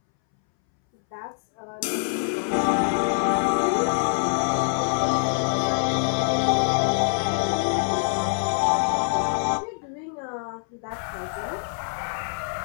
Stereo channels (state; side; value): silent; right; 62 dB below the other